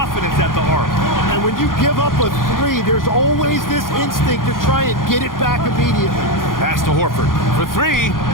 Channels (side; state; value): right; late; 0.90 ms